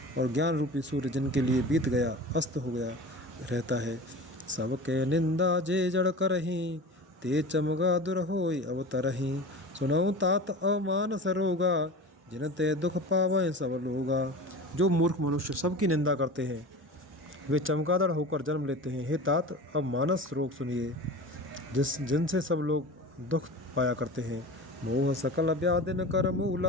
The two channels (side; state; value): both; normal; correlation 0.33